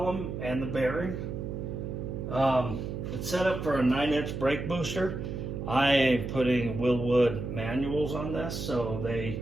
and the bearing. It's set up for a 9-inch brake booster. I am putting Wildwood manuals on this, so they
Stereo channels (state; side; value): noise; right; hum, 5 dB below the sound